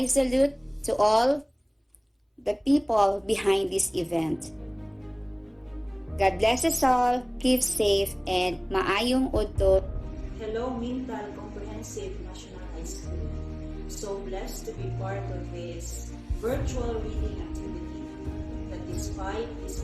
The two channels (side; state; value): both; identical; correlation 1.00